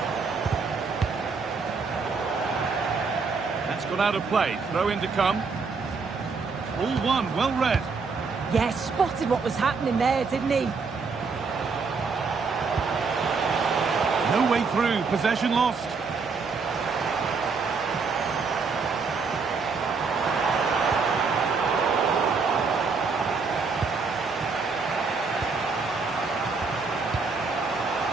That's gone out of play. Throw in to come. All one, well read. Yeah, spotted what was happening there, didn't he? No way through. Possession lost.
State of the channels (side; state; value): left; quieter; 4.8 dB